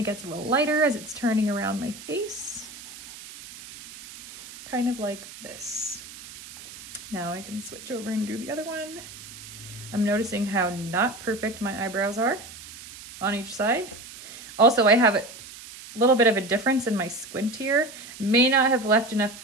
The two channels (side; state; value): right; noise; hiss, 15 dB below the sound